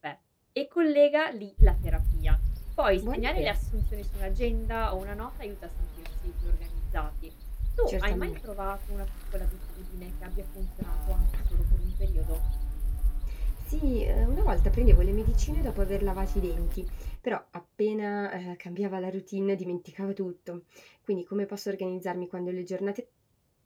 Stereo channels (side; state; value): both; identical; correlation 1.00